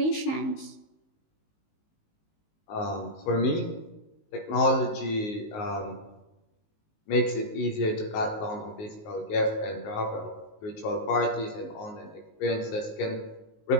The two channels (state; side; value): late; right; 19 ms